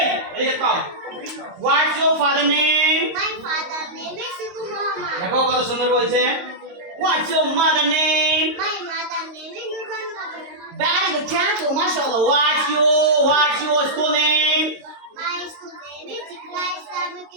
এদিকে তাও What's your father name? My father name is Ibn Muhammad. দেখো কত সুন্দর বলছে What's your mother name? My mother name is Nurhan Kabir. Very good, thank you, mashallah. What's your school name? My school name is Iqra Islamic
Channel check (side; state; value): left; late; 22 ms